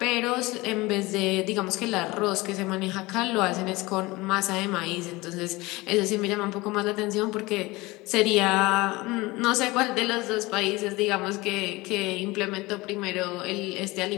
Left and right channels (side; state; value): right; quieter; 21.7 dB